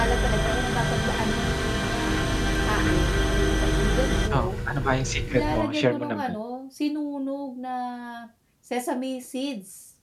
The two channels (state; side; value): identical; both; correlation 1.00